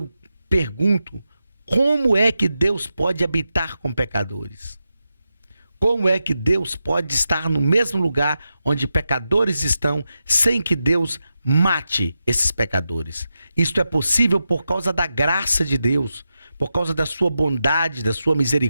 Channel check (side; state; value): both; inverted; correlation -0.89